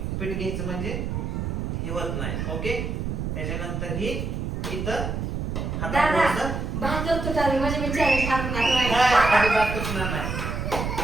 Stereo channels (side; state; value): right; noise; rumble, 3 dB below the sound